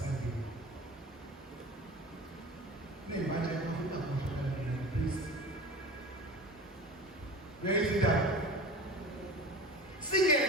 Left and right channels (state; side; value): normal; both; correlation 0.35